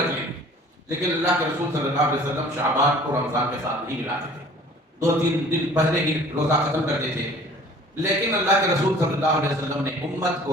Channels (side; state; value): both; normal; correlation 0.49